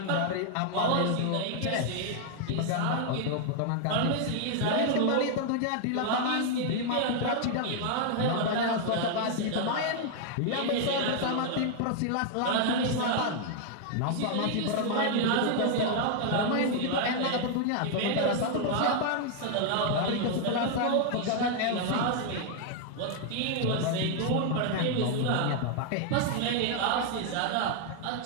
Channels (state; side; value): different; both; correlation 0.00